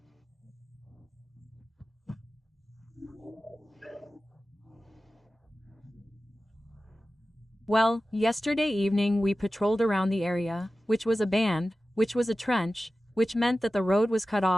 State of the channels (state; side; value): normal; both; correlation 0.95